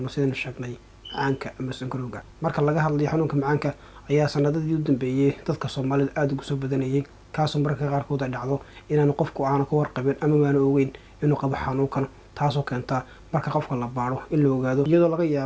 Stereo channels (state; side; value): identical; both; correlation 1.00